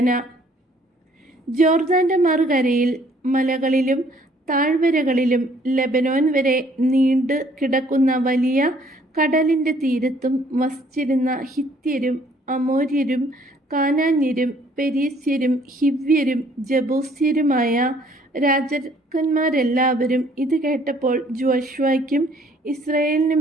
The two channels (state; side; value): normal; both; correlation 0.61